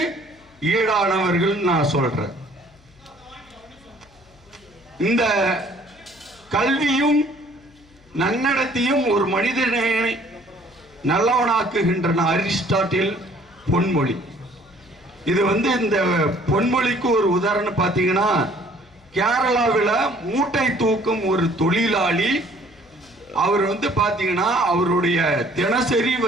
ஈடானவர்கள் நான் சொல்றேன். இந்த கல்வியும் நன்னடத்தையும் ஒரு மனிதனை நல்லவனாக்குகின்றன. அரிஸ்டாட்டில் பொன்மொழி. இது வந்து இந்த பொன்மொழிக்கு ஒரு உதாரணம் பார்த்தீங்கன்னா, கேரளாவில் மூட்டை தூக்கும் ஒரு தொழிலாளி. அவர் வந்து பார்த்தீங்கன்னா அவருடைய தினசரி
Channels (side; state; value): left; noise; hum, 29 dB below the sound